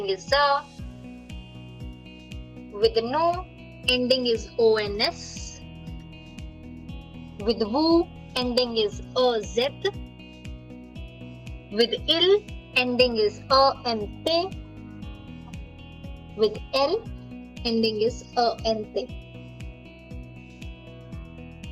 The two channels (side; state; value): both; identical; correlation 1.00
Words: is a. With nu, ending is ons. With vu, ending is az. With il, ending is ant. With l, ending is ant.